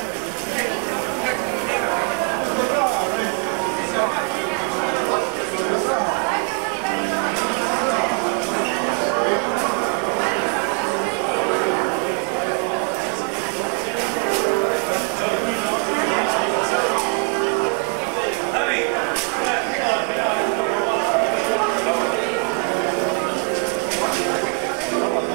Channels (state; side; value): quieter; left; 35.5 dB